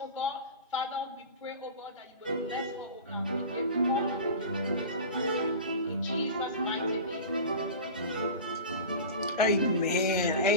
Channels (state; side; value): inverted; both; correlation -0.32